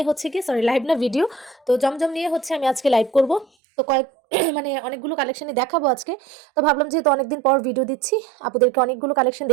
হচ্ছে কি, সরি লাইভ না, ভিডিও। তো জমজম নিয়ে হচ্ছে আমি আজকে লাইভ করব। তো কয়েক মানে অনেকগুলো কালেকশনই দেখাবো আজকে। তো ভাবলাম যেহেতু অনেকদিন পর ভিডিও দিচ্ছি, আপুদেরকে অনেকগুলো কালেকশন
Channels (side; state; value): left; drops out; at 3.5 s